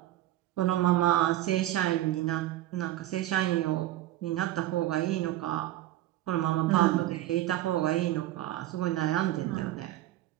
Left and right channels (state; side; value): quieter; left; 14.5 dB